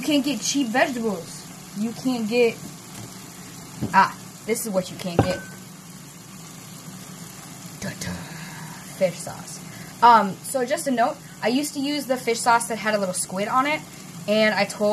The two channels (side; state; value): both; identical; correlation 1.00